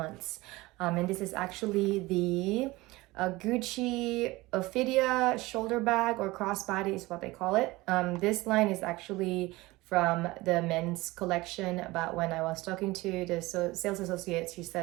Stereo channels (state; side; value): quieter; left; 20.6 dB